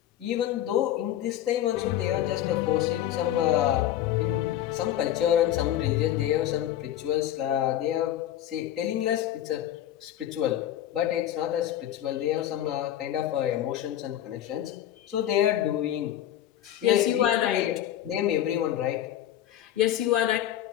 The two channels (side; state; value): right; quieter; 12.1 dB